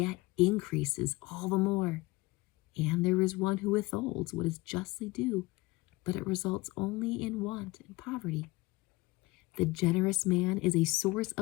increases all the more. And there is one who withholds what is justly due, but it results only in want and poverty. The generous man is a source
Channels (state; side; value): quieter; right; 22.2 dB